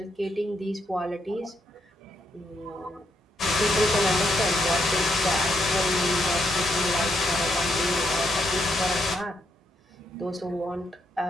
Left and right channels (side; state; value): both; normal; correlation 0.77